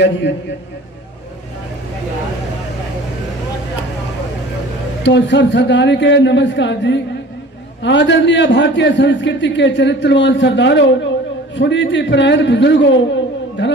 जी। तो सब सरदारी के नमस्कार जी। आदरणीय भारतीय संस्कृति के चरित्रवान सरदारों, सुनीति परायण बुजुर्गों,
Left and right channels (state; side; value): normal; both; correlation 0.44